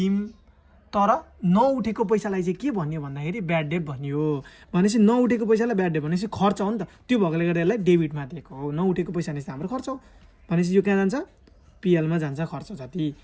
तर नउठेको पैसालाई चाहिँ के भन्यो भन्दाखेरि ब्याड डेप्ट भनियो। भनेपछि नउठेको पैसालाई ब्याड डेप्ट भनेपछि खर्च हो नि त, त्यो भएकोले गर्दा यसलाई डेबिटमा दिएको हो। नउठेको पैसा भनेपछि हाम्रो खर्च हो। भनेपछि यो कहाँ जान्छ? पिएलमा जान्छ खर्च जति।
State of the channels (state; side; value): identical; both; correlation 1.00